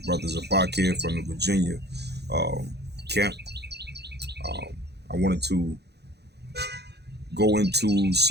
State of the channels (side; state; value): left; late; 0.48 ms